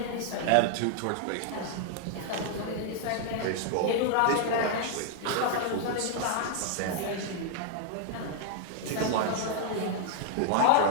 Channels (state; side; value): different; both; correlation -0.01